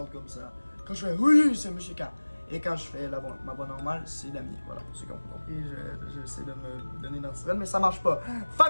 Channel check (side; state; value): both; inverted; correlation -1.00